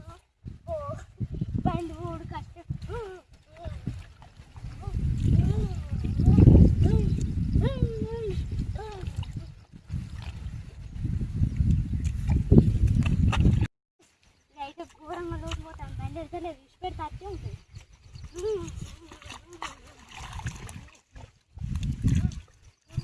బండి ఊడు కట్టే అయితే ఘోరంగా లోటు పోతాను బండి వెళ్తలేదు విడిచిపెడితే అట్టే ఉంటుంది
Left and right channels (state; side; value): identical; both; correlation 1.00